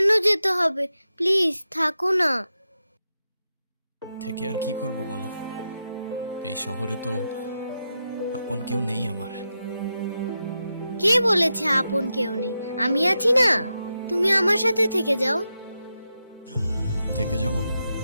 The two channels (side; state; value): both; inverted; correlation -0.88